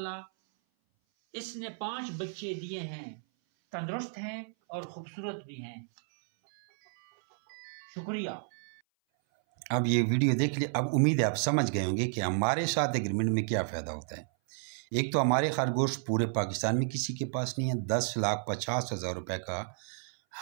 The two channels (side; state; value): left; silent; 57 dB below the other